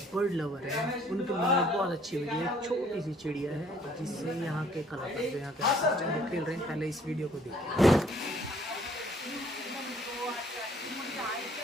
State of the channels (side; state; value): both; normal; correlation 0.60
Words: बर्ड लवर है उनके मन में बहुत अच्छी वीडियो है। छोटी सी चिड़िया है जिससे यहाँ के कलाकार जो यहाँ के खेल रहे हैं। पहले इस वीडियो को देखिए।